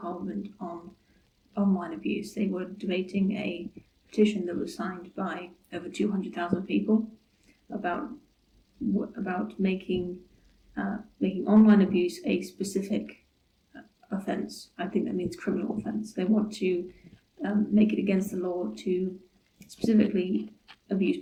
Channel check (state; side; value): identical; both; correlation 1.00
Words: on online abuse. They were debating a petition that was signed by over 200,000 people about making online abuse a specific offence. I think that means criminal offence. They want to make it against the law to specifically abuse